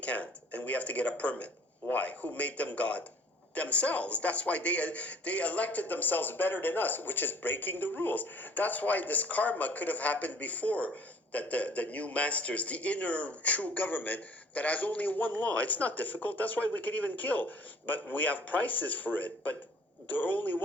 And we have to get a permit. Why? Who made them God? Themselves. That's why they elected themselves better than us, which is breaking the rules. That's why this karma could have happened before, that the new masters, the inner true government that has only one law. It's not difficult. That's why we can even kill. But we have prices for it. But there are only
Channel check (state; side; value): normal; both; correlation 0.53